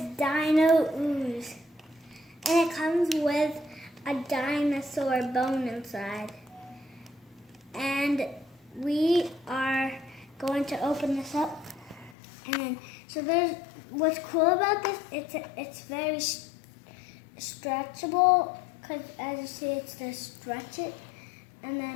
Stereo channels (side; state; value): right; drops out; at 12.2 s